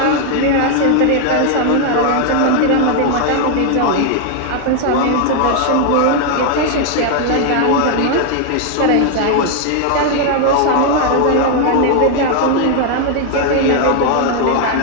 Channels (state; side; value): different; both; correlation 0.00